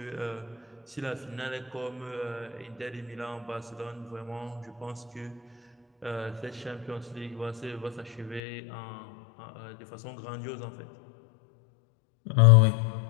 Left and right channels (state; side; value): drops out; right; at 8.4 s